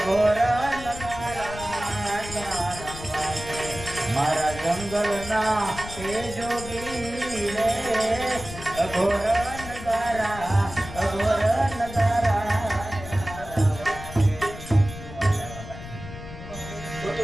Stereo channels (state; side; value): noise; left; rumble, 12 dB below the sound